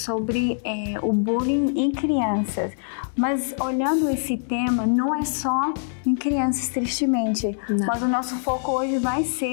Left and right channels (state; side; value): silent; right; digital silence